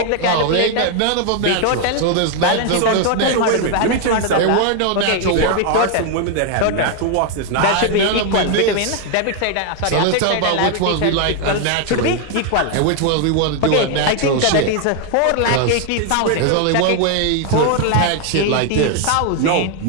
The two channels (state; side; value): different; both; correlation 0.01